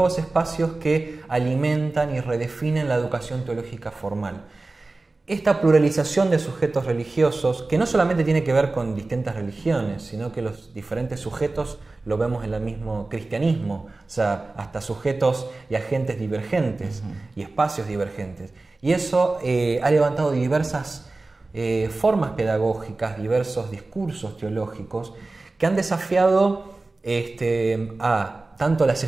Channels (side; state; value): left; quieter; 3.3 dB